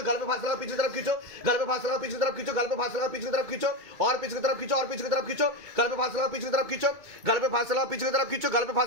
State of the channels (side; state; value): left; late; 2.2 ms